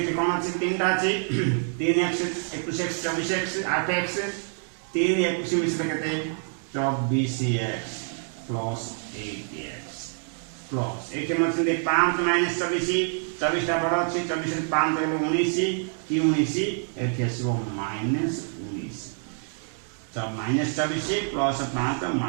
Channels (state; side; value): silent; left; 57 dB below the other